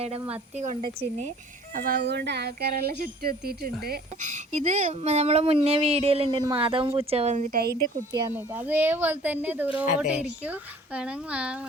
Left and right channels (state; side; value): normal; both; correlation 0.50